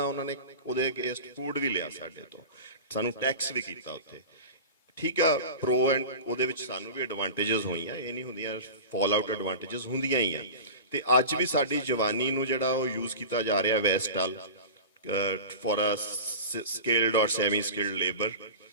ਉਹਨਾਂ ਨੇ ਉਹਦੇ ਅਗੇਂਸਟ ਫੂਡ ਵੀ ਲਿਆ ਸਾਡੇ ਤੋਂ ਸਾਨੂੰ ਟੈਕਸ ਵੀ ਕੀਤਾ ਉੱਥੇ ਠੀਕ ਆ ਪ੍ਰੋ ਐਂਡ ਉਹਦੇ ਵਿੱਚ ਸਾਨੂੰ ਵੀ ਐਡਵਾਂਟੇਜਸ ਹੋਈਆਂ ਇਹ ਨਹੀਂ ਹੁੰਦੀਆਂ ਫਾਲ ਆਊਟ ਐਡਵਾਂਟੇਜਸ ਹੁੰਦੀਆਂ ਹੀ ਆ ਤੇ ਅੱਜ ਵੀ ਸਾਡੀ ਜਵਾਨੀ ਨੂੰ ਜਿਹੜਾ ਉਹ ਯੂਜ਼ ਕੀਤਾ ਜਾ ਰਿਹਾ ਵੈਸਟ ਵੱਲ ਫॉर ਅ ਸਕਿਲਡ ਔਰ ਸੈਮੀ ਸਕਿਲਡ ਲੇਬਰ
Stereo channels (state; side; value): inverted; both; correlation -0.32